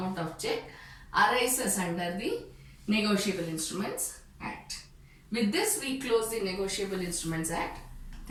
of check arises under the Negotiable Instruments Act. With this, we close the Negotiable Instruments Act.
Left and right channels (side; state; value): both; identical; correlation 1.00